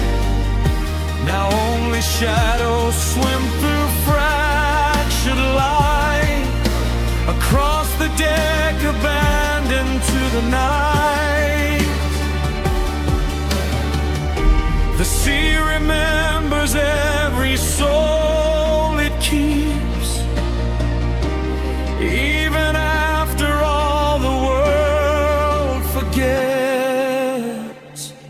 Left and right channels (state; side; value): identical; both; correlation 1.00